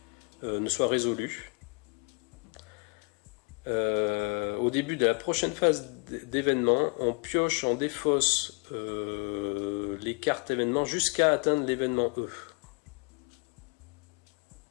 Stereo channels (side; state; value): right; quieter; 34.2 dB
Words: ne soit résolu, au début de la prochaine phase d'événement, on pioche, on défausse les cartes événements jusqu'à atteindre l'événement E.